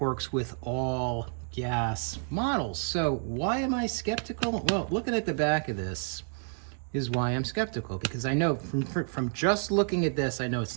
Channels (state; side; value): silent; left; 58 dB below the other